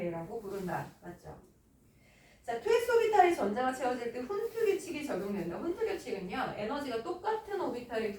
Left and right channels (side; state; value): both; identical; correlation 1.00